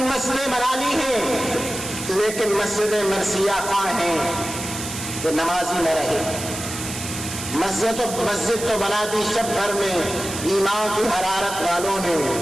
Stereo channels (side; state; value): right; noise; hiss, 8 dB below the sound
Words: مسجدیں بنا لی ہیں، لیکن مسجدیں مرثیہ خواہ ہیں کہ نمازی نہ رہے۔ مسجد تو بنا دی شب بھر میں ایمان کی حرارت والوں نے،